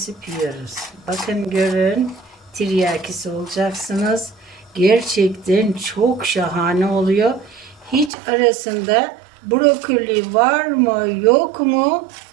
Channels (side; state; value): left; drops out; at 8.1 s